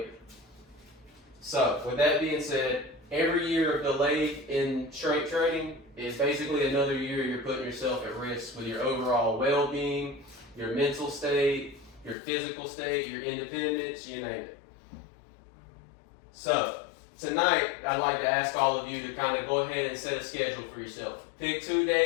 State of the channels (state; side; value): drops out; right; at 12.2 s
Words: So, with that being said, every year of delay in strength training is basically another year you're putting yourself at risk with your overall well-being, your mental state, your physical state, your independence, you name it. So, tonight, I'd like to ask all of you to kind of go ahead and set a schedule for yourself. Pick 2